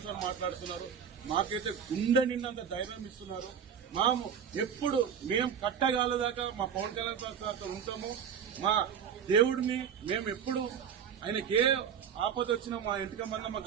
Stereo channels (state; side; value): quieter; left; 7.7 dB